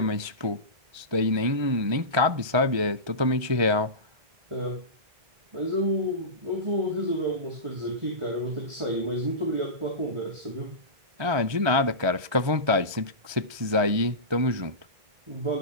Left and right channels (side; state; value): left; late; 1.3 ms